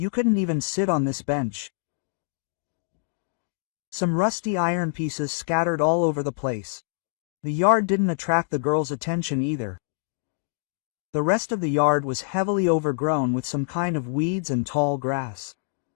couldn't even sit on this bench. Some rusty iron pieces scattered all over the place. The yard didn't attract the girl's attention either. The rest of the yard was heavily overgrown with some kind of weeds and tall grass.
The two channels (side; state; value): right; silent; digital silence